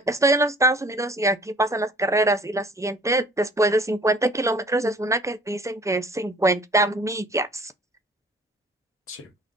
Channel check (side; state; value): both; normal; correlation 0.52